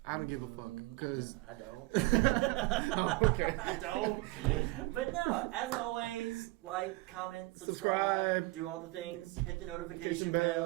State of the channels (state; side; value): quieter; left; 21.6 dB